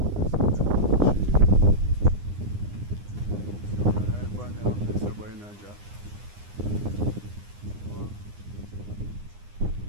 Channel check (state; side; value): late; left; 9.8 ms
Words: Right on there up there, so boy in a job. Wow.